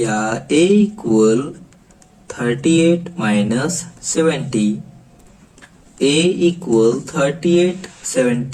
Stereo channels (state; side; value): identical; both; correlation 1.00